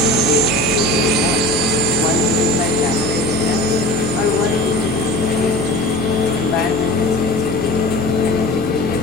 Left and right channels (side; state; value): both; normal; correlation 0.37